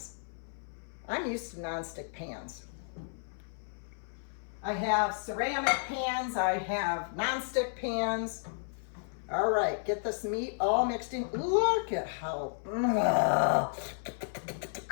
I'm used to non-stick pans. I have ceramic pans, I have non-stick pans. All right, get this meat all mixed in. Look at how.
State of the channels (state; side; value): silent; right; 56 dB below the other